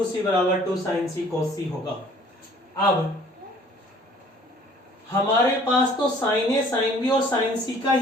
C बराबर 2 साइन सी कोस सी होगा। अब हमारे पास तो साइन ए साइन बी और साइन सी का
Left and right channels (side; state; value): both; normal; correlation 0.54